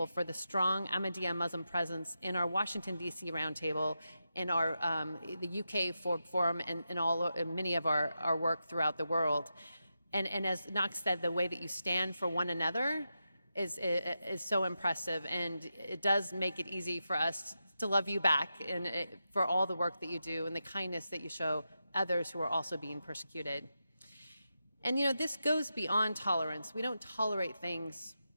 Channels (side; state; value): both; inverted; correlation -0.88